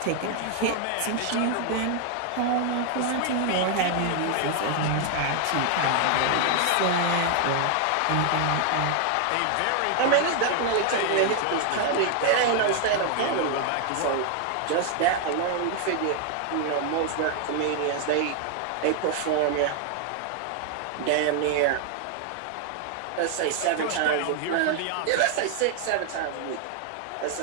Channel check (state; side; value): different; both; correlation 0.00